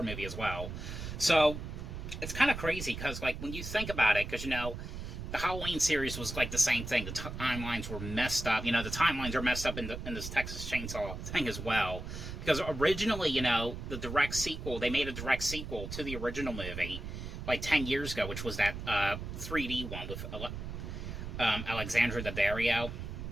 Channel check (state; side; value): noise; right; rumble, 7 dB below the sound